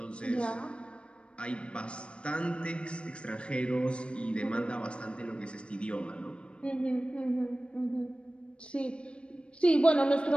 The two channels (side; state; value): right; late; 0.057 ms